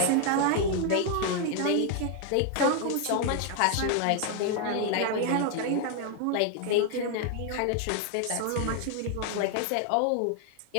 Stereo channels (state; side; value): different; both; correlation 0.00